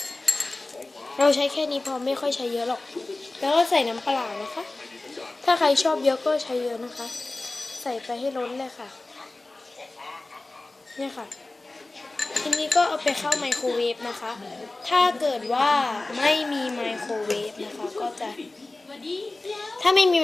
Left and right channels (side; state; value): right; quieter; 3.0 dB